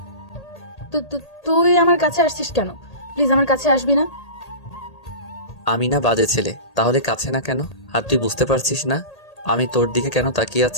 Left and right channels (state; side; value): late; right; 1.8 ms